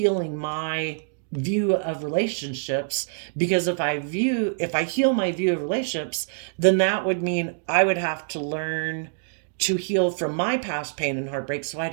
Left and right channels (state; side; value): silent; left; digital silence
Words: my view of relationships, because if I heal my view of relationships, then that would mean I would have to learn to heal from my past pain and heartbreak, so I